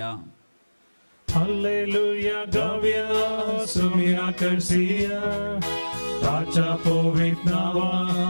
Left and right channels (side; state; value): both; inverted; correlation -1.00